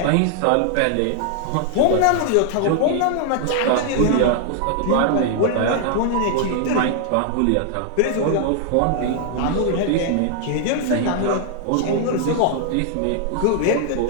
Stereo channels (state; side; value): different; both; correlation 0.00